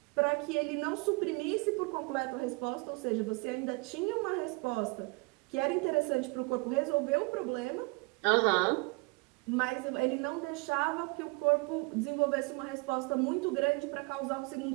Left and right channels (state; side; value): quieter; left; 28.0 dB